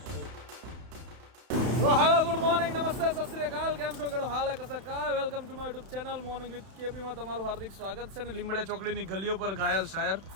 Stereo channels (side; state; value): left; late; 31 ms